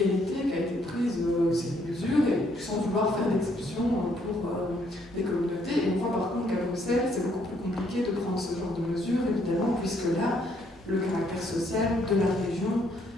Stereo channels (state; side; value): normal; both; correlation 0.69